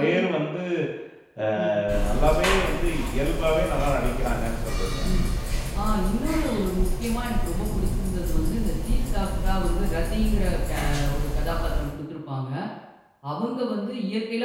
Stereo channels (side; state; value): both; identical; correlation 1.00